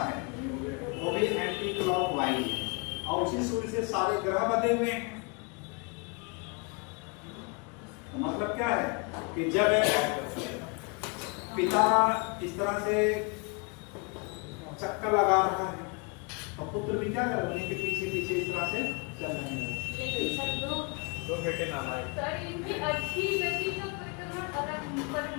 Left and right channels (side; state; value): right; quieter; 32.8 dB